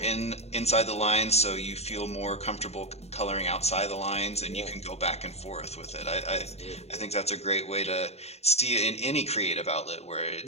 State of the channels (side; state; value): right; late; 0.31 ms